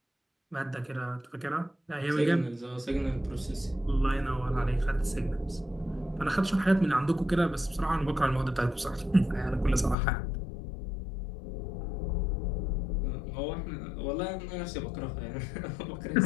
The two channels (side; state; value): right; drops out; at 10.0 s